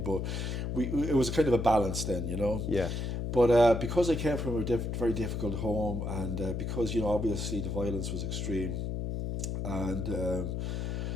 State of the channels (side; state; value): left; noise; hum, 2 dB below the sound